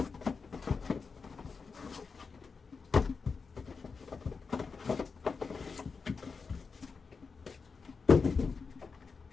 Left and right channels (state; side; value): quieter; right; 5.0 dB